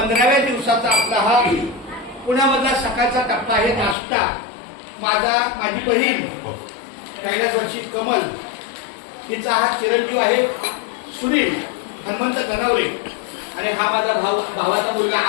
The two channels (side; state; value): right; drops out; at 4.0 s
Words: दिवसाचा आपला हा पुण्यामधला सकाळचा टप्पा आहे नाश्ता. माझी बहीण कैलासवासी कमल हिचा हा चिरंजीव आहे सुनील हनुमंत गणवरे आणि हा माझा भावाचा मुलगा